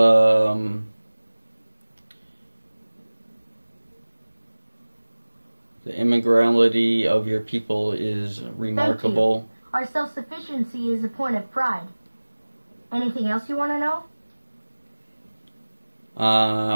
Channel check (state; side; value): inverted; both; correlation -1.00